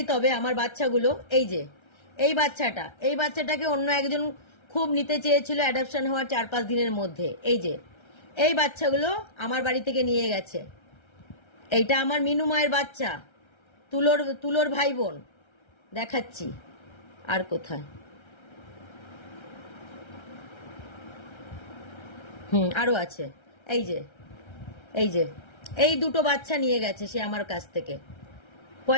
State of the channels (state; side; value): late; right; 1.3 ms